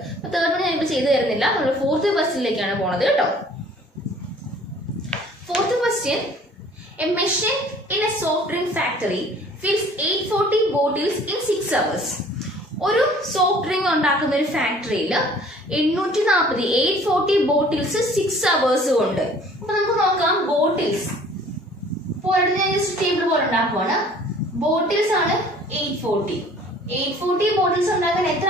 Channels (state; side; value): normal; both; correlation 0.52